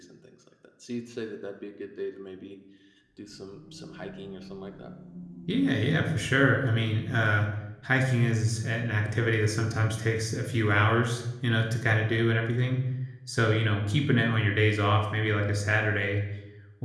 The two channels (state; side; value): identical; both; correlation 1.00